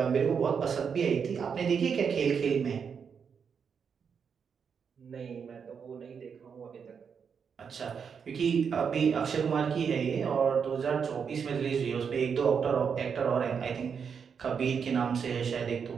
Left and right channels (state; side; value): quieter; left; 6.6 dB